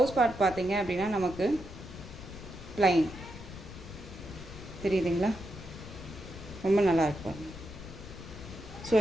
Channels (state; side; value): noise; left; rumble, 13 dB below the sound